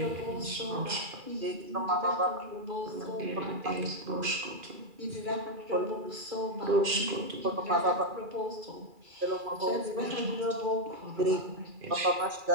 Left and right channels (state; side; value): late; left; 2.5 ms